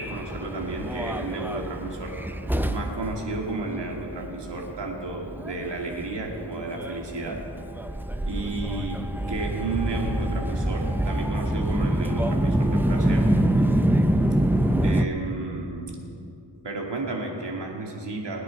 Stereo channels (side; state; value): both; normal; correlation 0.75